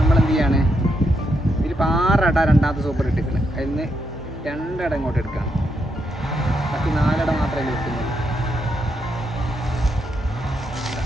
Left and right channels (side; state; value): both; normal; correlation 0.80